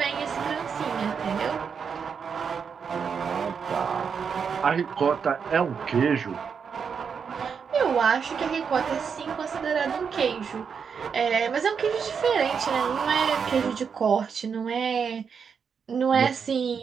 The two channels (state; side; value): quieter; left; 6.4 dB